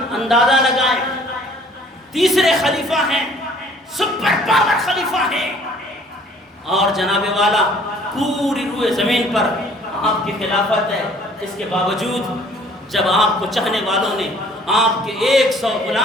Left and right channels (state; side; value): normal; both; correlation 0.56